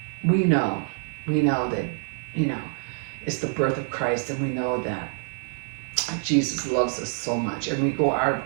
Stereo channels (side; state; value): left; silent; 61 dB below the other